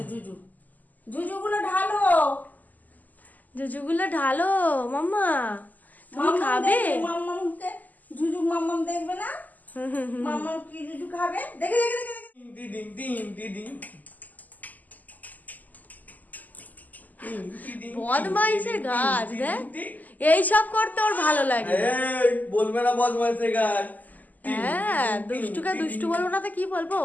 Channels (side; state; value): right; late; 0.081 ms